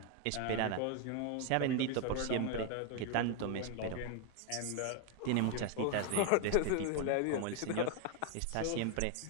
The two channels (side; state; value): both; different; correlation 0.01